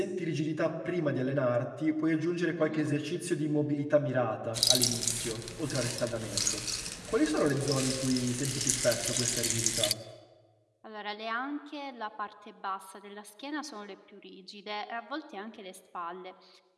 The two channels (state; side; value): identical; both; correlation 1.00